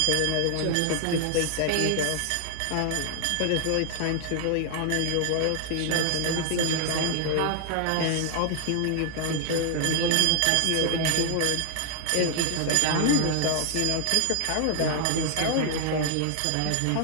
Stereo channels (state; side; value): different; both; correlation 0.00